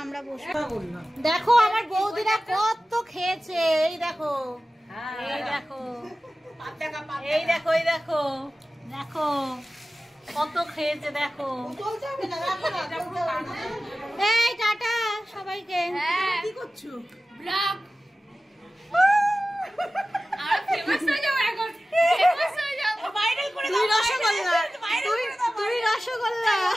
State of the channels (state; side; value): normal; both; correlation 0.96